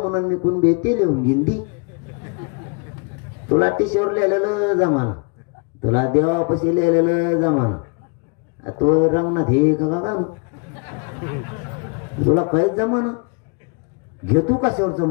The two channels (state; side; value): quieter; right; 34.3 dB